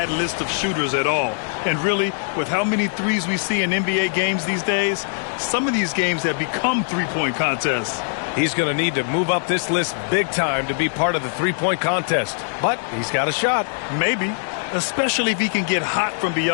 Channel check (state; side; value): silent; right; digital silence